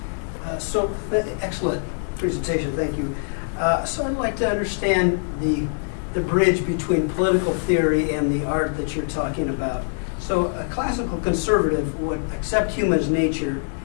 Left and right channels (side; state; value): right; silent; 63 dB below the other